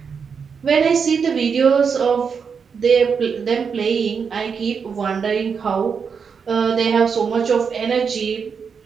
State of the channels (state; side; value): quieter; left; 6.1 dB